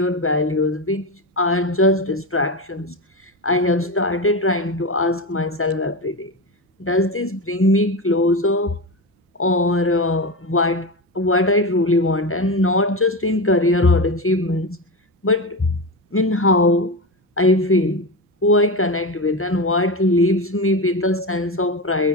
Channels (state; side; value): normal; both; correlation 0.19